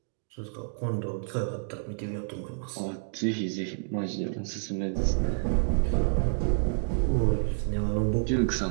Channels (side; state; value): left; silent; digital silence